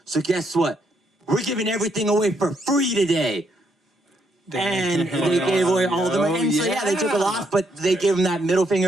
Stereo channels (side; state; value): both; normal; correlation 0.75